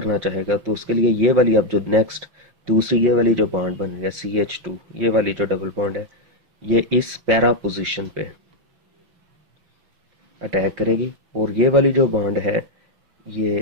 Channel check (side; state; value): left; late; 5.6 ms